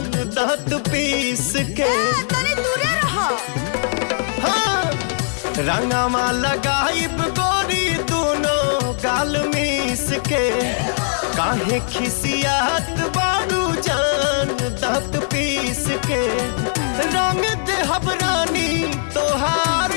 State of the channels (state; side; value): silent; right; digital silence